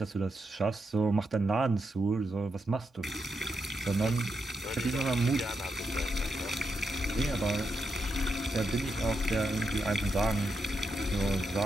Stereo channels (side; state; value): both; normal; correlation 0.84